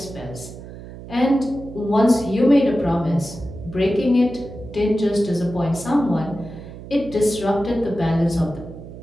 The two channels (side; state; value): right; noise; hum, 14 dB below the sound